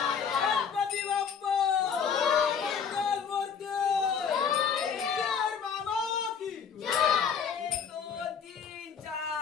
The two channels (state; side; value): quieter; right; 6.8 dB